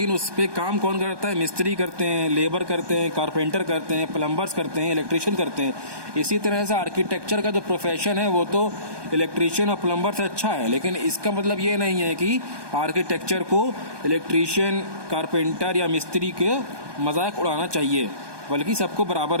उस पर काम कौन करता है, मिस्त्री करते हैं, लेबर करते हैं, कारपेंटर करते हैं, प्लम्बर्स करते हैं, इलेक्ट्रिशियन करते हैं। इसी तरह से आर्किटेक्चर का जो प्रोफेशन है वो तो इलेक्ट्रिशियन और प्लम्बर से अच्छा है, लेकिन इसका मतलब ये नहीं है कि आर्किटेक्चर को इलेक्ट्रिशियन, कारपेंटर या मिस्त्री के मजाक उड़ाना चाहिए, बल्कि सबको बराबर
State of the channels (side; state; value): left; late; 1.2 ms